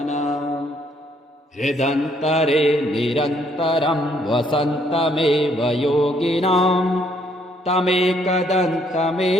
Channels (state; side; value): normal; both; correlation 0.68